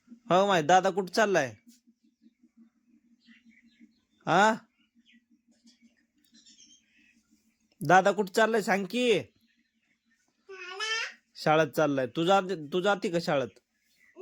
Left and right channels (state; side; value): identical; both; correlation 1.00